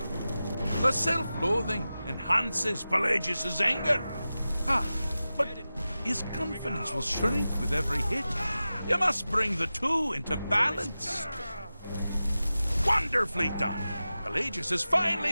The self-loathing enhances Pelagius's anger. But his confidence will shrink with every hit. You must bring the two into balance. Wonderfully done. Pelagius is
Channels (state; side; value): inverted; both; correlation -0.94